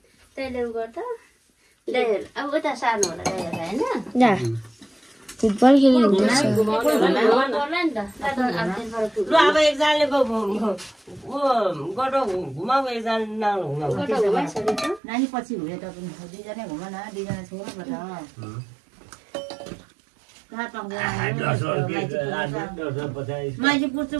त्यसले गर्दा अब उता सार्नु होला होइन जा फुटबल खेल्नु ल अब एकजनाले गटो घुमाऊ एकजना नघुमाऊ नानी पछि हुने त दुईजना घुमा न दुईजना छोड्नुपर्छ मान्छे पुज्छु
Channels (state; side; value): drops out; left; at 15.0 s